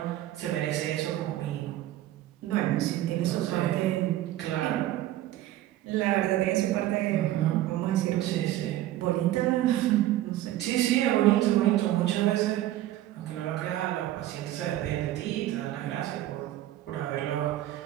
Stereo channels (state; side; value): quieter; left; 14.2 dB